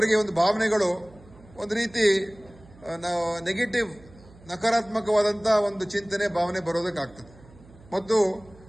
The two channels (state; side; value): noise; right; hum, 23 dB below the sound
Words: ಒಂದು ಭಾವನೆಗಳು ಒಂದು ರೀತಿ ನೆಗೆಟಿವ್, ನಕಾರಾತ್ಮಕವಾದಂಥ ಒಂದು ಚಿಂತನೆ, ಭಾವನೆ ಬರೋದಕ್ಕಾಗ್ತದೆ. ಮತ್ತು